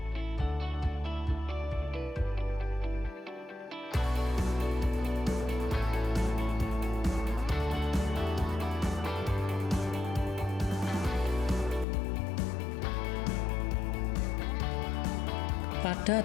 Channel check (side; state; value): right; drops out; at 11.9 s